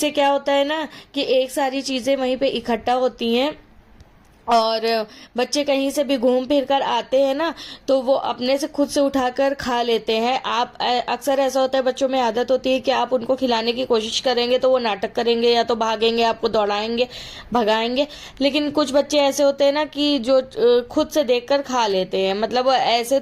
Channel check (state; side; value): identical; both; correlation 1.00